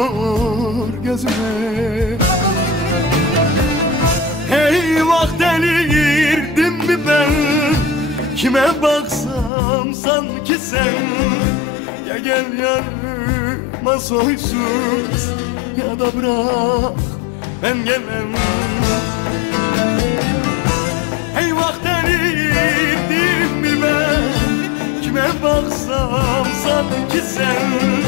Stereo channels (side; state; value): right; drops out; at 9.5 s